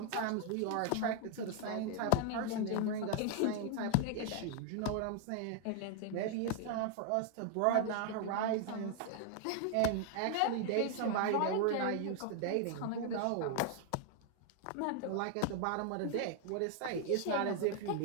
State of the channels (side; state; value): both; different; correlation 0.00